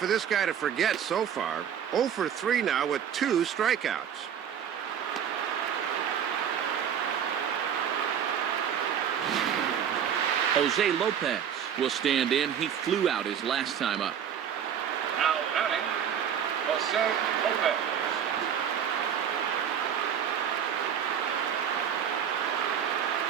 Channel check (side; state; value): left; quieter; 8.6 dB